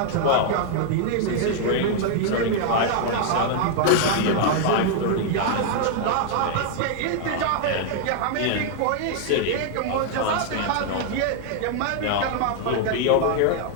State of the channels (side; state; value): both; different; correlation 0.00